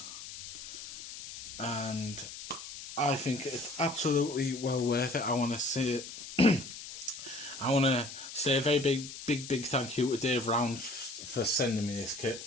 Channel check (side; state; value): left; noise; hiss, 11 dB below the sound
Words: and I think it's absolutely well worth it. I want to say I want to say a very big thank you to Dave Round for sending me this kit.